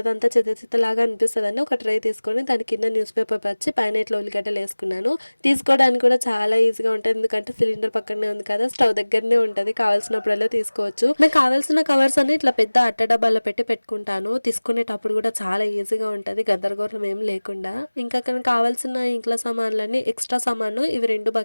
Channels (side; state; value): both; inverted; correlation -1.00